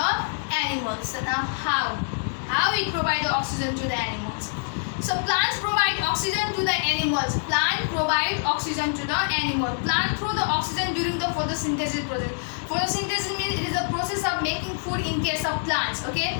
animals. So now how it provide the oxygen to the animals? So plants provide oxygen to the animals. Plant provide oxygen to the animal. Plant through the oxygen during the photosynthesis process. Photosynthesis means it is a process of making food in case of plants. Okay,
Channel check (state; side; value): silent; right; digital silence